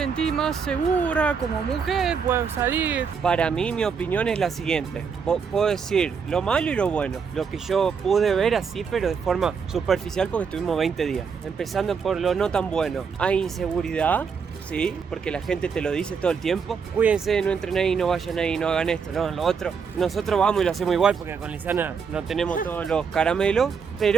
más segura como mujer, puedo salir. Para mí, mi opinión es la siguiente. Puedo decir lo malo y lo bueno. Lo que yo pude ver así, pero de forma superficial porque estuvimos 20 días. Empezando por lo no tan bueno. Hay inseguridad, sí, porque la gente te lo dice todo el tiempo. Cuídense, no entren ahí, no vayan ahí, no hagan esto, no, lo otro. Nosotros vamos y lo hacemos igual porque con Lisana no tenemos todos los caramelos.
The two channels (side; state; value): left; quieter; 6.0 dB